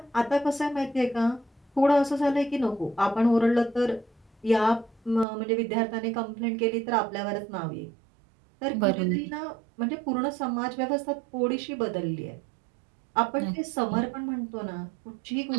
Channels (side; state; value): left; drops out; at 5.2 s